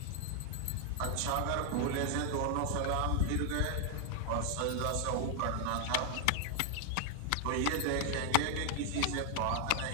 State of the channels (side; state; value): both; different; correlation 0.00